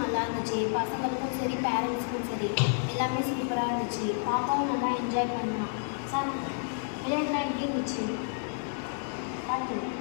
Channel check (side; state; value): right; silent; digital silence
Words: நல்லா இருந்துச்சு. பசங்களுக்கும் சரி, பேரண்ட்ஸுக்கும் சரி, எல்லாமே சூப்பராக இருந்துச்சு. பாப்பாவும் நல்லா என்ஜாய் பண்ணலாம். சார், விளையாட்டுலாம் எப்படி இருந்துச்சு? பார்த்து